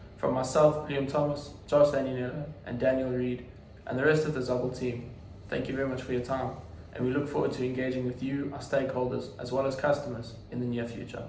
From myself, Liam Thomas, Josh Daniela, and Daniel Reed, and the rest of the Zubble team, thank you very much for your time, and we look forward to engaging with you, our stakeholders, as well as customers in the near future.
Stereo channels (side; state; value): both; identical; correlation 1.00